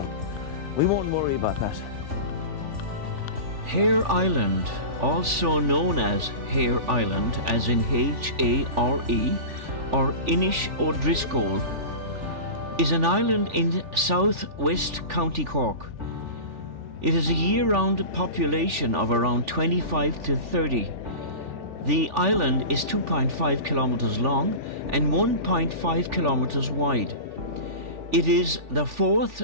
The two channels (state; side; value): late; left; 3.4 ms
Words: we won't worry about that. Heir Island, also known as Heir Island, as in H-A-R-E, or Inish O'Driscoll, is an island in southwest County Cork. It has a year-round population of around 25 to 30. The island is 2.5 kilometers long and 1.5 kilometers wide. It is the 4th